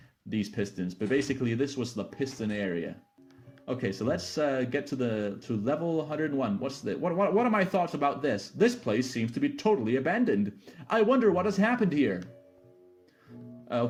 these pistons. But basically, this was the piston area. Okay, so let's get to level 101. What are my thoughts about this? This place seems to be totally abandoned. I wonder what has happened here.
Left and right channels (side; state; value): both; identical; correlation 1.00